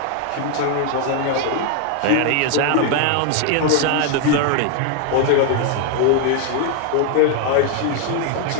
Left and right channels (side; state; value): both; different; correlation 0.00